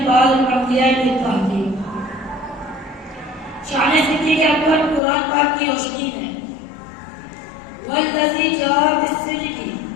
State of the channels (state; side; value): drops out; right; at 5.0 s